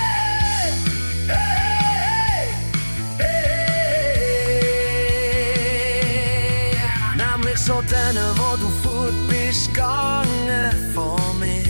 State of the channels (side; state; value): both; inverted; correlation -1.00